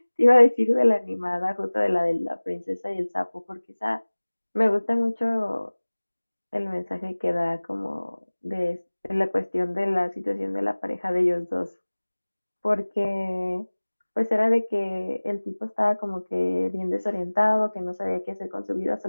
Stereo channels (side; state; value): both; inverted; correlation -1.00